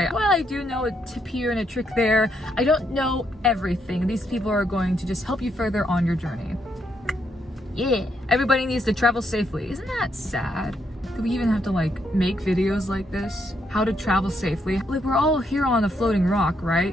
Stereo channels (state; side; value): normal; both; correlation 0.76